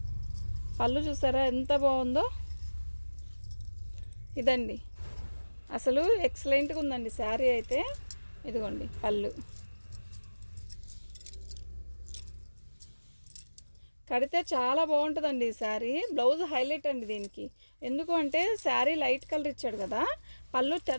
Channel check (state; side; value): inverted; both; correlation -1.00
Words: పళ్ళు చూసారా ఎంత బాగుందో. ఇదండి అసలు ఎక్సలెంట్గా ఉందండి శారీ అయితే. ఇదిగోండి పళ్ళు. కడితే చాలా బాగుంటుందండి ఈ శారీ. బ్లౌజ్ హైలైట్ అండి దీనికి. ఎందుకు అంటే శారీ లైట్ కలర్ ఇచ్చాడు కదా, పళ్ళు